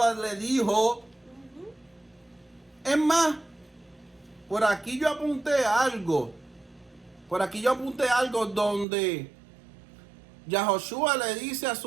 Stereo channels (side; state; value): left; drops out; at 8.8 s